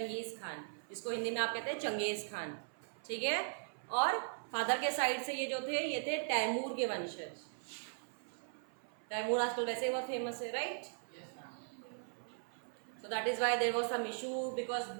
Khan, जिसको हिंदी में आप कहते हैं Genghis Khan, ठीक है। और फादर के साइड से ये जो थे ये थे तैमूर के वंशज। तैमूर आजकल वैसे बहुत फेमस है, right? So that is why there was some issue because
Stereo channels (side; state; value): left; silent; 52 dB below the other